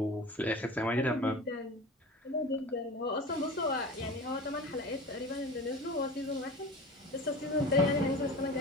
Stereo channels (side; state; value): both; normal; correlation 0.34